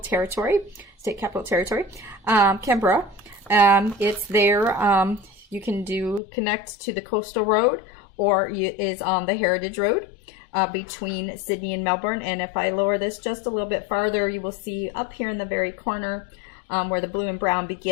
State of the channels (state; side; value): drops out; right; at 6.2 s